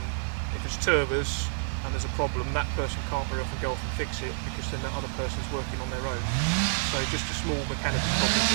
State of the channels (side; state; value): left; silent; 59 dB below the other